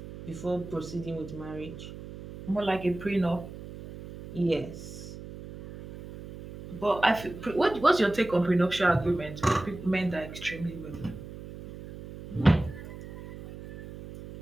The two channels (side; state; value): right; noise; hum, 13 dB below the sound